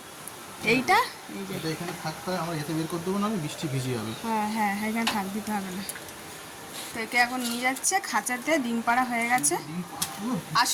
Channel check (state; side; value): identical; both; correlation 1.00